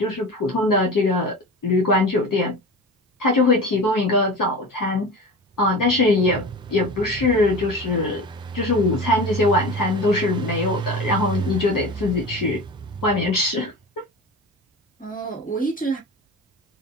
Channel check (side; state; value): both; normal; correlation 0.32